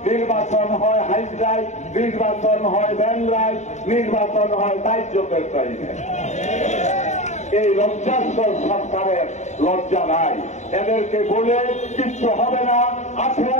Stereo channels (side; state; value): right; late; 0.34 ms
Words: নির্বাচন হয় হাইড্রাই, নির্বাচন হয় ব্যানরাই, নির্বাচন হয় দায়িত্বের টাইমে। এই লজ্জাস্কর সরকারের লজ্জা নাই, এদেরকে বলে কিচ্ছু হবে না।